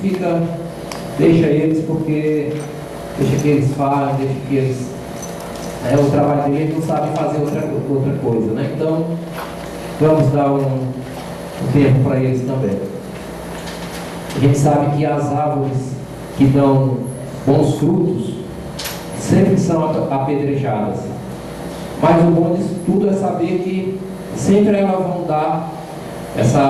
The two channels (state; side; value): identical; both; correlation 1.00